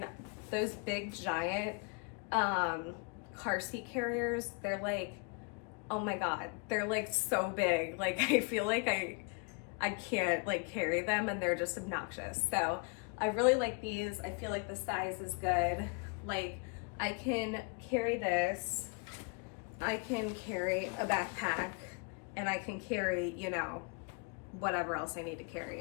those big giant car seat carriers, they're like, oh my God, they're like so big. Like I feel like I can't like carry them, and they're just obnoxious. So I really like these. I feel like the size is good. Like I can carry this, I can carry a backpack, and I can carry, you know, whatever else I need to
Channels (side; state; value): right; quieter; 34.2 dB